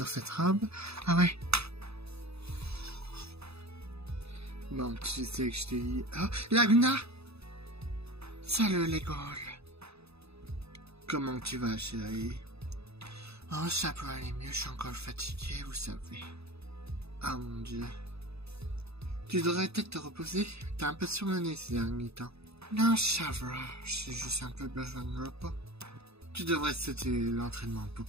cette robe. Ah ouais. Bon, tu sais que je t'ai dit... Oh, Laguna! Salut les gars. Comment tu vas, chérie? Oh, ça peut aller mieux, je suis encore fatigué, vous savez. Oh mon Dieu. Tu devrais peut-être te reposer. T'as un peu surmené ces derniers temps. Non, ça va. J'ai juste un peu besoin de repos. Tu devrais sauter l'entraînement,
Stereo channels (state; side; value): late; left; 0.79 ms